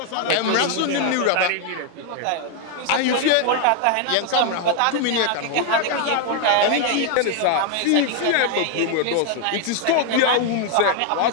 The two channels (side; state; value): both; different; correlation 0.01